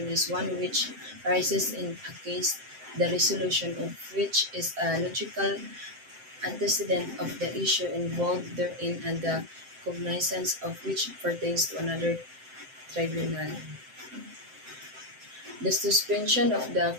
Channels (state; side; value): late; left; 7.7 ms